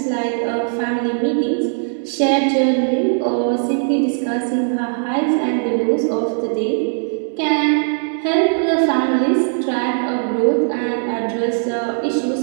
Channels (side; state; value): left; silent; digital silence